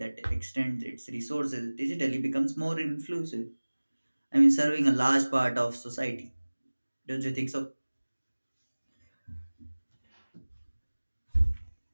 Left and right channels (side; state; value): both; inverted; correlation -1.00